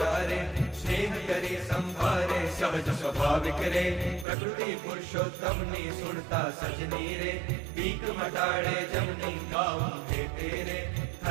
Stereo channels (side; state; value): left; drops out; at 4.2 s